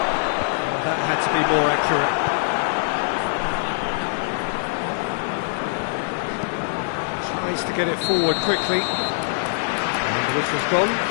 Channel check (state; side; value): silent; right; digital silence